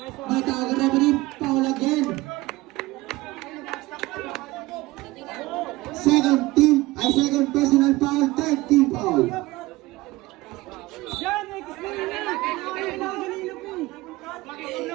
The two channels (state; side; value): quieter; left; 19.6 dB